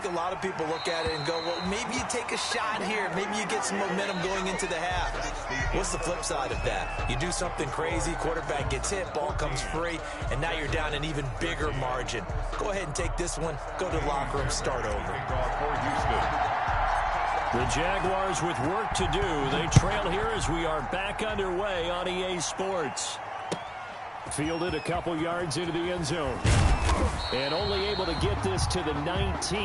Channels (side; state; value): both; identical; correlation 1.00